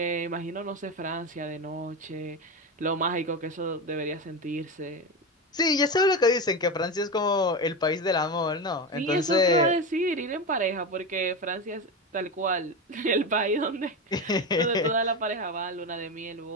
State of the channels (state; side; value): normal; both; correlation 0.18